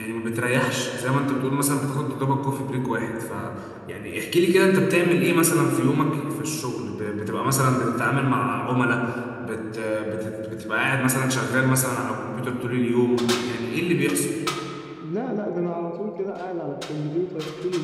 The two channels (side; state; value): both; identical; correlation 1.00